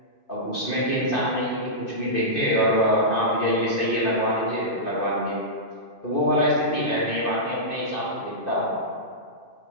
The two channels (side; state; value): right; late; 2.6 ms